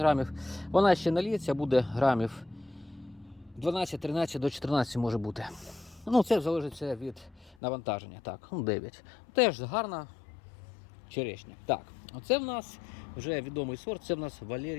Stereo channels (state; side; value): drops out; right; at 7.6 s